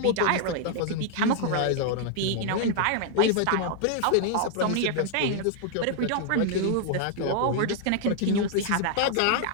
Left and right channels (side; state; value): both; different; correlation 0.00